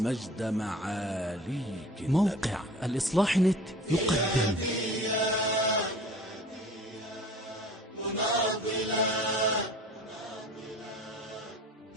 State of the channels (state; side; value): normal; both; correlation 0.43